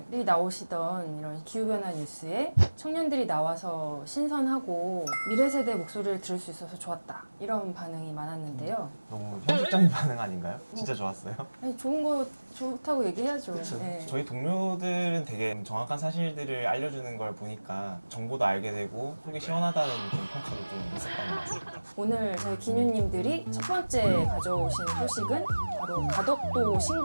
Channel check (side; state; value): both; inverted; correlation -1.00